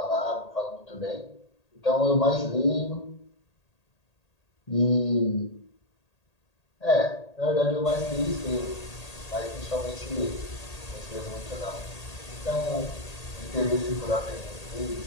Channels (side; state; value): right; late; 1.8 ms